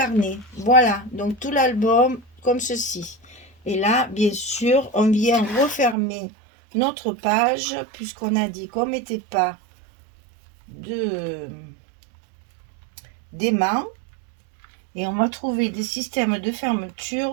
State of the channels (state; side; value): drops out; left; at 6.0 s